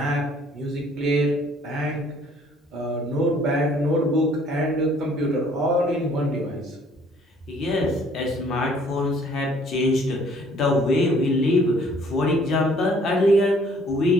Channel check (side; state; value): both; normal; correlation 0.59